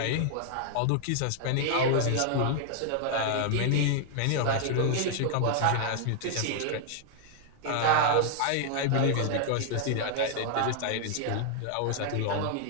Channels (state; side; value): different; both; correlation 0.00